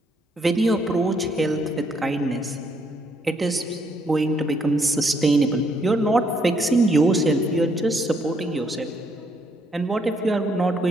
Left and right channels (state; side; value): normal; both; correlation 0.71